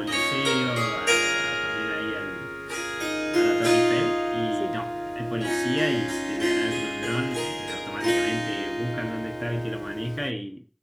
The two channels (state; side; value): identical; both; correlation 1.00